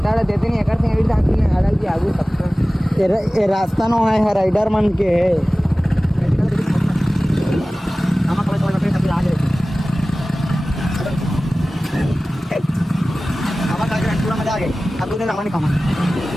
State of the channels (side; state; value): both; normal; correlation 0.97